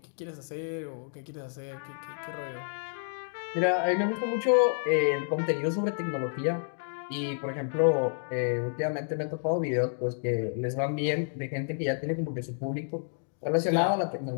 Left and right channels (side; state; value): right; silent; digital silence